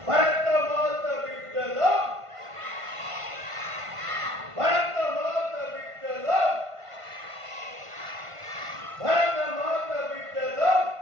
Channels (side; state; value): left; late; 1.5 ms